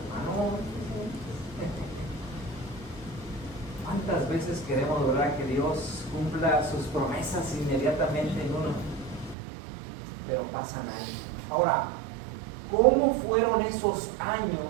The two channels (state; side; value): drops out; left; at 9.3 s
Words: Hermano, ¿cuántas veces queremos lograr que Dios cumpla sus promesas inmediatamente en uno? Pero pasan años. Ahora, ¿cómo fueron esos